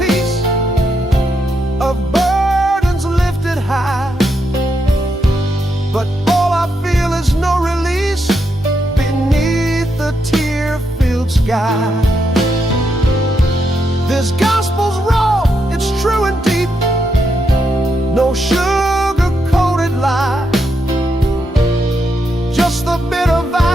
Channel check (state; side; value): normal; both; correlation 0.81